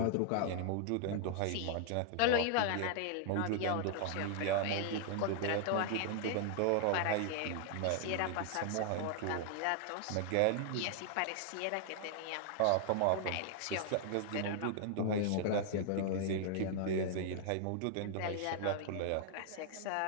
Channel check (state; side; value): different; both; correlation 0.00